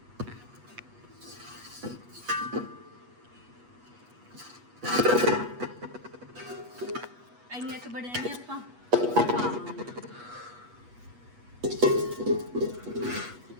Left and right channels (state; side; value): late; left; 8.3 ms